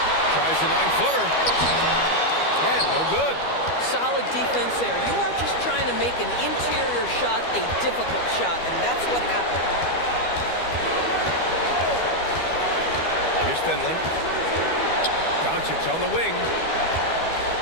Tries a 9-footer. And no good. Solid defense there. You are just trying to make an interior shot a difficult shot, and that's what happened. Here's Finley. Doncic on the wing.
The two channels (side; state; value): right; late; 12 ms